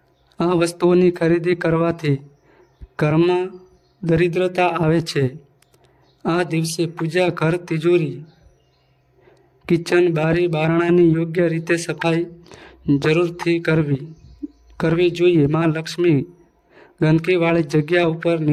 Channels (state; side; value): identical; both; correlation 1.00